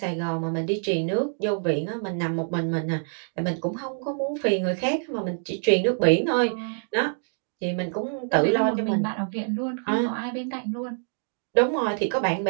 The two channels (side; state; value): left; silent; digital silence